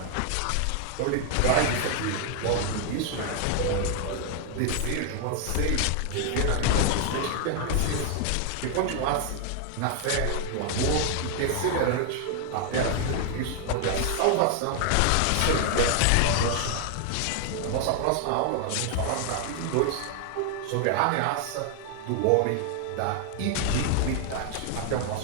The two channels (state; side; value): different; both; correlation 0.00